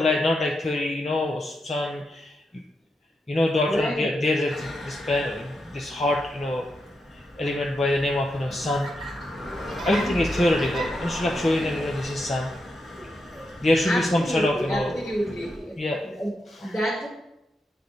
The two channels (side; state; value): both; normal; correlation 0.85